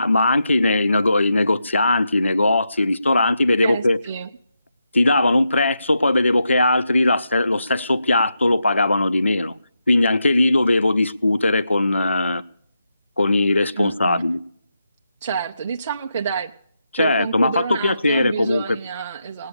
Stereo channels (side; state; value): both; inverted; correlation -0.85